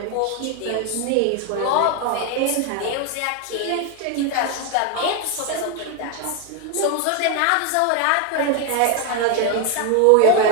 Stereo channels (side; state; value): both; different; correlation 0.01